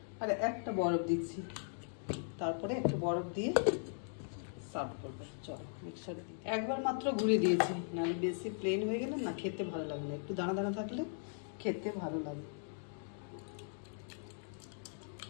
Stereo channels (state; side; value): silent; right; digital silence